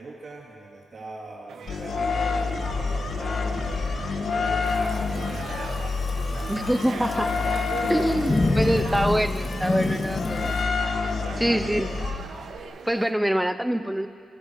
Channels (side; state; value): both; normal; correlation 0.92